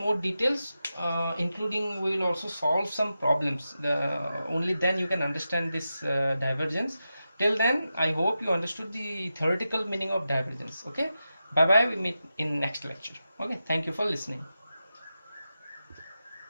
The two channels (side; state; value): both; inverted; correlation -0.91